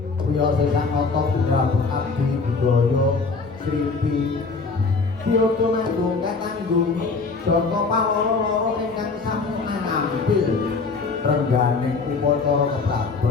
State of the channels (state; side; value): quieter; right; 4.3 dB